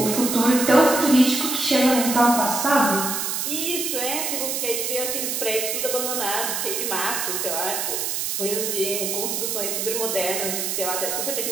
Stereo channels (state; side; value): noise; right; hiss, 1 dB below the sound